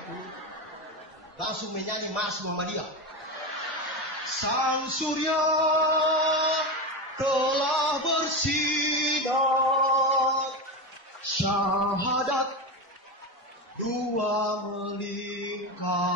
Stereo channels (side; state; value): both; normal; correlation 0.18